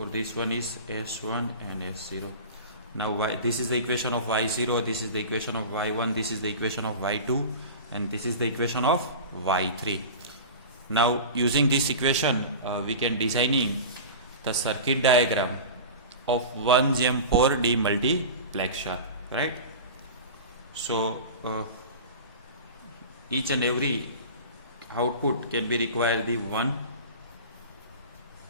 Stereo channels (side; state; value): both; inverted; correlation -0.33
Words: this one is S1 and S0. Now this is the equation of Y0, this is the equation of Y1, this is the equation of Y2, and this is the equation of Y3. Now using this equation we can designing the circuit diagram of 1GEM4 demultiplexer, right? So each and every output can be required the 1